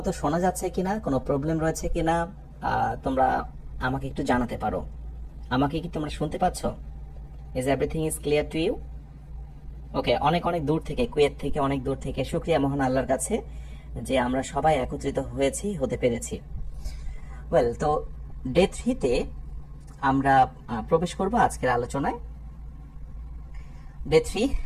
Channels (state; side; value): identical; both; correlation 1.00